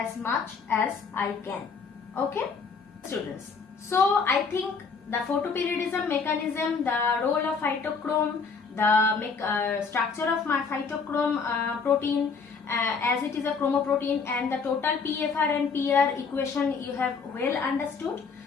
much as I can. Okay, students. So I think the photoperiodism mechanism, the role of phytochrome, the structure of my phytochrome protein, as it is a chromoprotein, and the total PFR and PR equation you have well understood.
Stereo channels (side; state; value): right; quieter; 5.2 dB